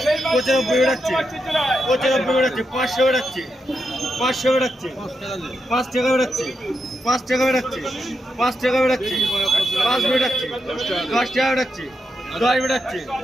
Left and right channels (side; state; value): both; normal; correlation 0.85